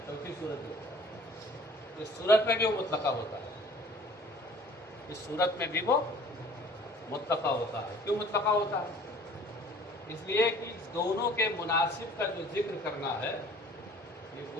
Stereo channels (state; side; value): normal; both; correlation 0.50